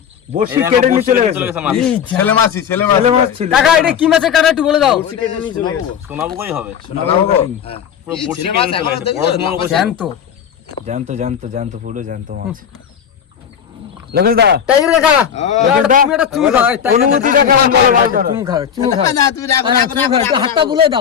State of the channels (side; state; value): right; quieter; 8.2 dB